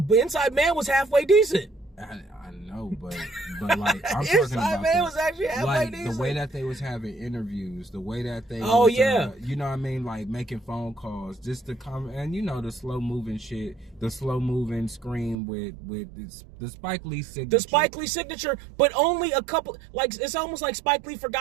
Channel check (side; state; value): left; drops out; at 15.4 s